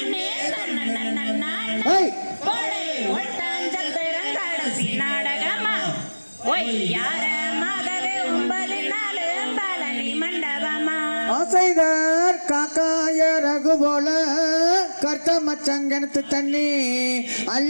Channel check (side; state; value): both; inverted; correlation -1.00